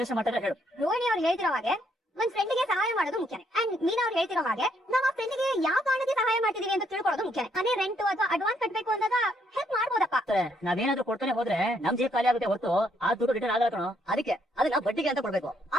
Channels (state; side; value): normal; both; correlation 0.72